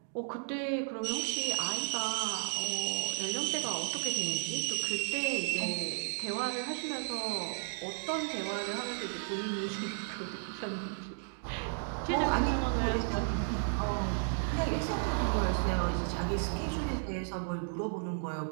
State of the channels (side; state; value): left; silent; digital silence